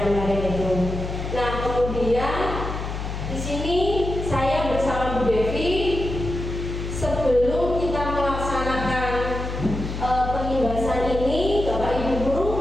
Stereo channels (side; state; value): left; noise; hum, 5 dB below the sound